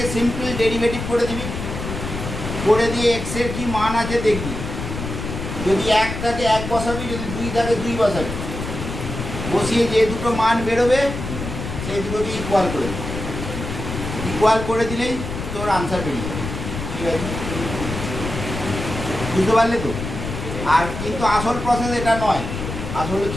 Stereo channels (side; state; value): left; noise; rumble, 6 dB below the sound